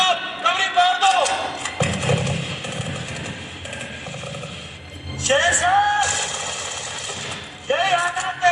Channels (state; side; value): identical; both; correlation 1.00